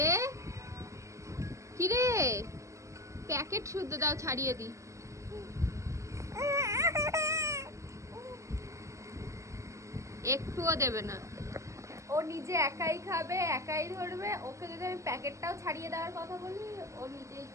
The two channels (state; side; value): late; left; 0.15 ms